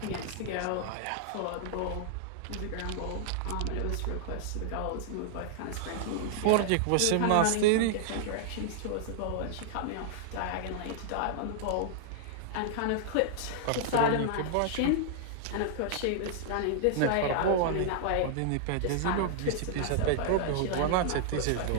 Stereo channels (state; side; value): different; both; correlation -0.01